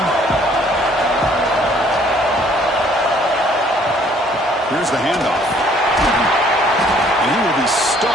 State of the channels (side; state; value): both; normal; correlation 0.60